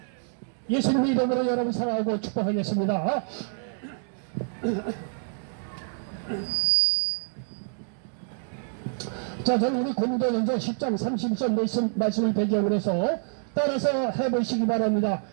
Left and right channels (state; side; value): silent; left; digital silence